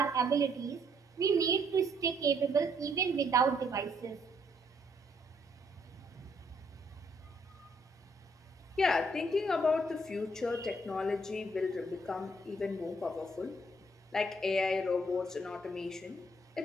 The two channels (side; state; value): both; normal; correlation 0.69